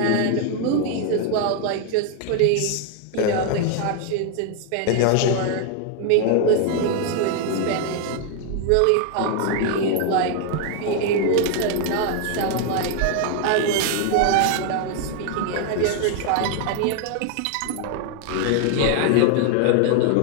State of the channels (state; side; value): different; both; correlation 0.00